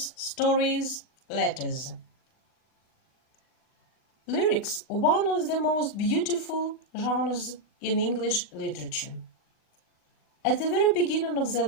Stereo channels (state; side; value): late; right; 39 ms